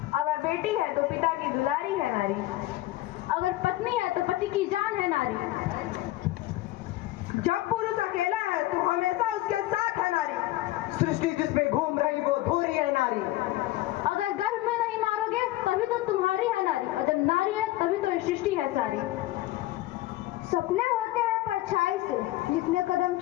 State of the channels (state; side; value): quieter; right; 16.8 dB